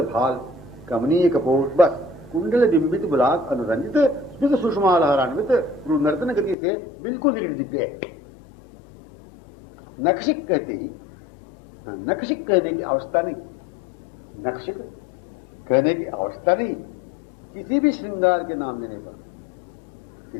भाल कमनीय कपोर बस कुंडल बिंबित बुलाक अनुरंजित स्मित सुषमा लहरान्वित भ्रू नर्तन गति से बिल्कुल निकट दिख गए। नक्षिक कहते ही, नक्षिक कहने की आवश्यकता नहीं, नक्षिक कहने की आवश्यकता नहीं। किसी भी श्रृंगार के नाम देने पर,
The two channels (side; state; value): right; drops out; at 6.6 s